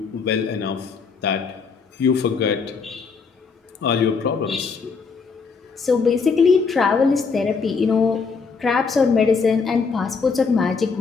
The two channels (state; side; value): quieter; right; 5.0 dB